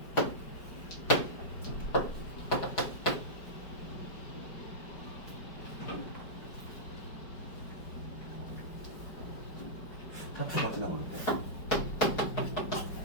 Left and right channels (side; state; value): right; late; 4.9 ms